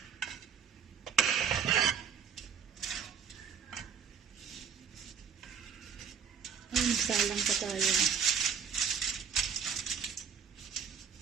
Ay, nagsalang pa tayo.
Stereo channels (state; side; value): quieter; left; 7.1 dB